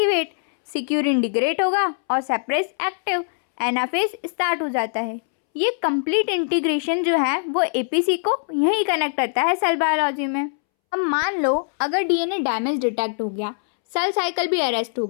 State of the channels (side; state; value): right; silent; 64 dB below the other